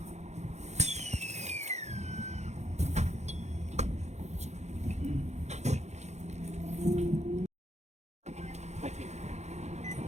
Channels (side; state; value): left; late; 0.32 ms